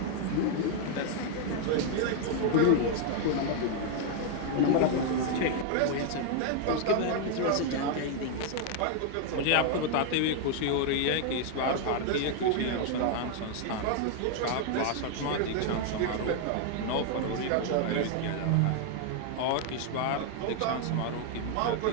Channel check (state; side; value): different; both; correlation 0.00